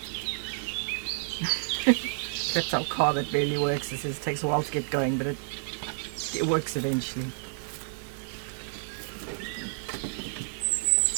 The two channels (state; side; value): silent; left; digital silence